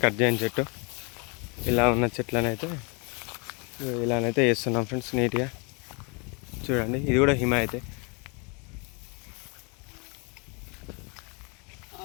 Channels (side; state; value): right; quieter; 32.7 dB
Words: కట్ చేయని చెట్టు. ఇలా ఉన్న చెట్లనైతే ఇలానైతే వేస్తున్నాం ఫ్రెండ్స్ నీట్గా. చూడండి ఇది కూడా హిమాయతే.